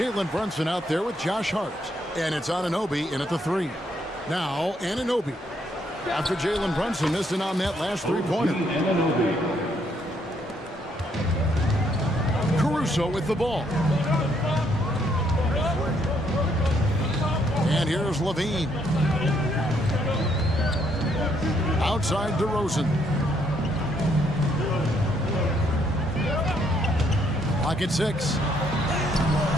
Brunson out there with Josh Hart. And it's Anunoby in at the 3. Now Anunoby. After Jalen Brunson missing on that last three-pointer. Caruso with the ball. And here's Levine. Outside DeRozan. Clock at 6.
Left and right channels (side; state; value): both; normal; correlation 0.71